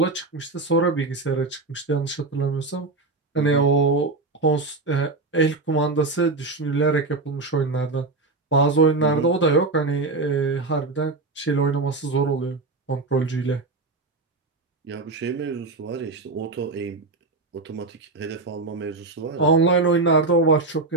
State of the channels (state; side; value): quieter; left; 3.6 dB